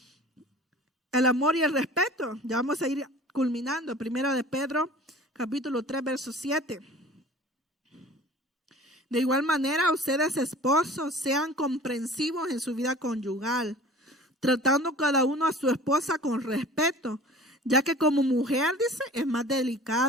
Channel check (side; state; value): both; normal; correlation 0.44